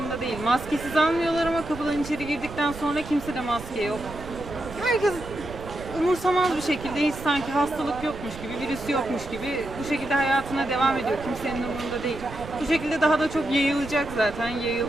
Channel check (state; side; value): noise; right; rumble, 13 dB below the sound